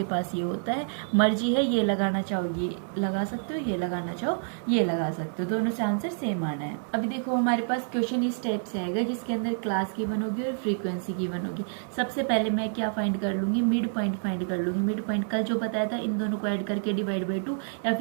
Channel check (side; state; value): left; silent; digital silence